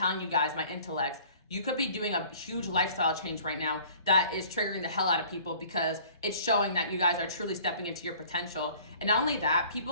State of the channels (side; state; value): both; inverted; correlation -0.51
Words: you guys, my intellects, you could be doing a huge lifestyle change right now that is triggering the hell out of people because it's showing that you guys are truly stepping into your potential. And not only that,